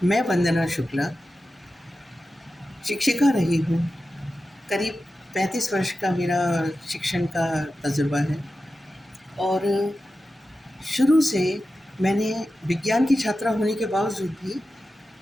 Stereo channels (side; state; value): both; normal; correlation 0.93